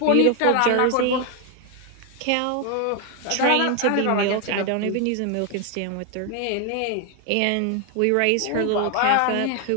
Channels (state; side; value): different; both; correlation 0.01